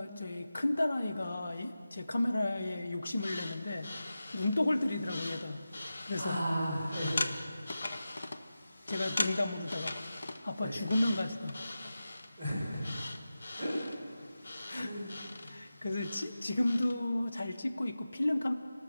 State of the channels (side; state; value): both; inverted; correlation -0.94